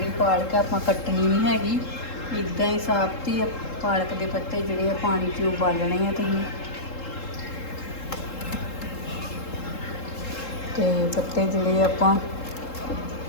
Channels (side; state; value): right; late; 3.7 ms